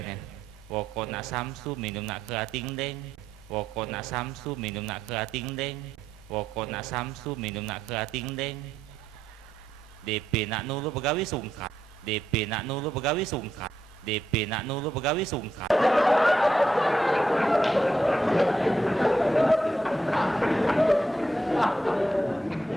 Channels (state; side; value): normal; both; correlation 0.81